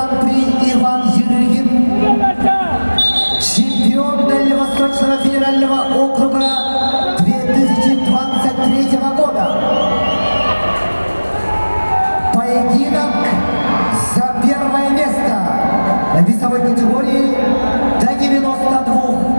Иван Ерыгин, чемпион Дальневосточного федерального округа 2023 года. Поединок за первое место в весовой категории до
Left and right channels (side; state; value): both; inverted; correlation -1.00